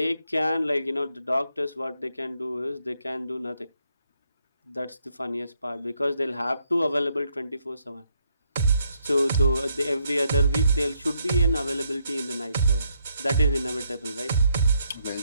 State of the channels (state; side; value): inverted; both; correlation -0.75